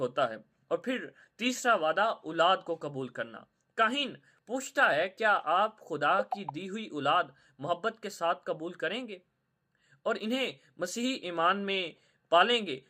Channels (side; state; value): both; identical; correlation 1.00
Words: है। और फिर तीसरा वादा, औलाद को कबूल करना। काहिन पूछता है, क्या आप खुदा की दी हुई औलाद मोहब्बत के साथ कबूल करेंगे और इन्हें मसीही ईमान में पालेंगे?